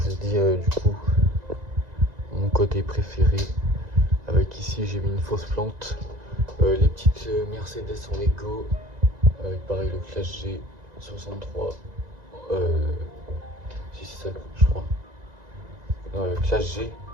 vous dis, du coup, mon côté préféré. Avec ici, j'ai mis une fausse plante. Les petites Mercedes en Lego. Avec pareil le Clash G 63. Si c'est ça, je crois. Classe G,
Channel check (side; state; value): left; late; 1.9 ms